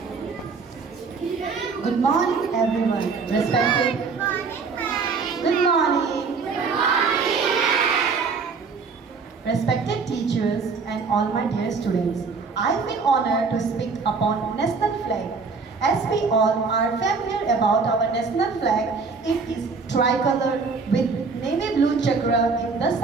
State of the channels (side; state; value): left; quieter; 4.8 dB